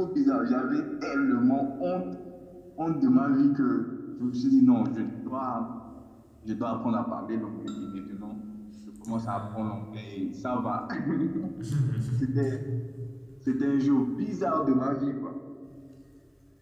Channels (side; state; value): both; identical; correlation 1.00